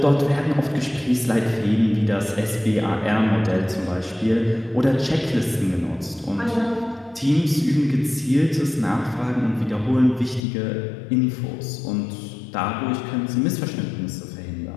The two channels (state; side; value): drops out; right; at 10.4 s